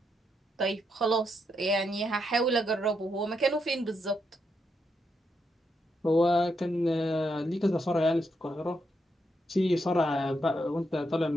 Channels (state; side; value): normal; both; correlation 0.81